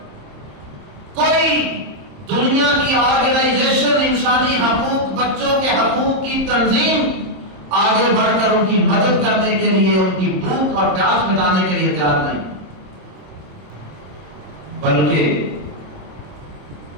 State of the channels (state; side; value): late; left; 27 ms